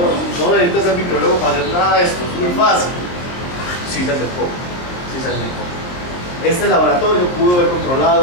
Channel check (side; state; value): right; late; 22 ms